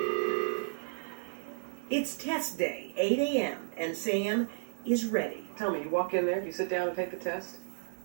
It's test day, 8 a.m., and Sam is ready. Tell me, you walk in there, you sit down and take the test?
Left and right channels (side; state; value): left; silent; digital silence